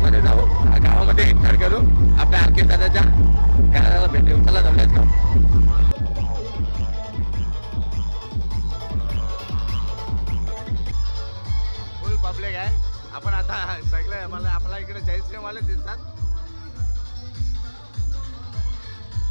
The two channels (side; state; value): both; inverted; correlation -1.00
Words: जाऊ, गावामध्ये एंटर करू, आपल्या आरके दादाच्या घराला भेटू. चला जाऊयात का? फुल पब्लिक आहे. आपण आता सगळे मला आपल्या इकडे जयश्रीराम वाले दिसतात.